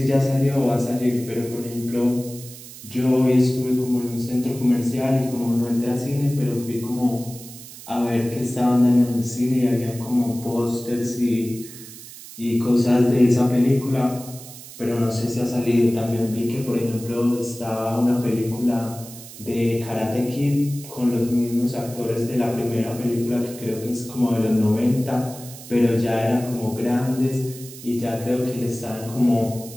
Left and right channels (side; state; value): right; noise; hiss, 15 dB below the sound